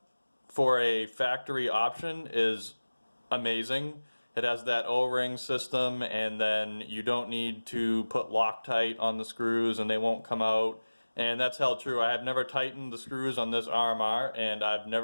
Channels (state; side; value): inverted; both; correlation -1.00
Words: for a factory option is amazing. It has that O-ring system, and then you don't need to put Loctite on the screws and they won't come out. And that's held true. I have never tightened the screws on this RMR, and I've